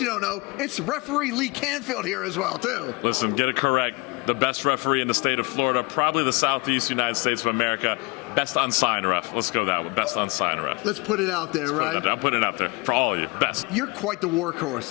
you don't know, it's Referee Lee Canfield here as well, too. Listen, get it correct. The best referee in the state of Florida, probably the Southeast United States of America. Best unsigned ref. Let's go that one. Best unsigned ref. Let's put it out there, right? I'm putting it out there for all of you. Best. You're quite the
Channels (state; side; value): quieter; right; 27.1 dB